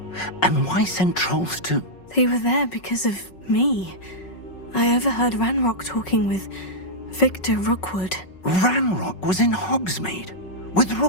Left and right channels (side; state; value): right; late; 5.4 ms